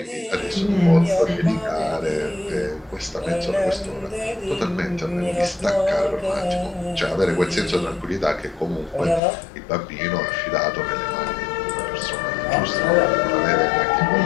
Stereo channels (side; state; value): right; drops out; at 9.2 s